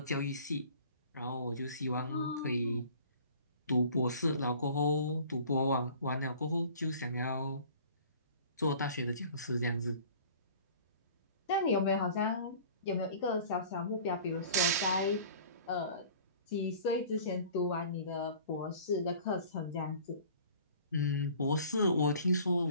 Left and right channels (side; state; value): both; inverted; correlation -0.47